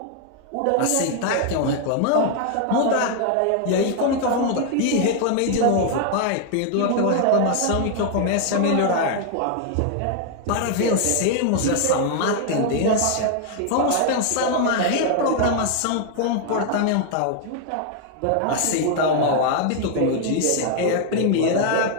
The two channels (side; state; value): both; different; correlation 0.00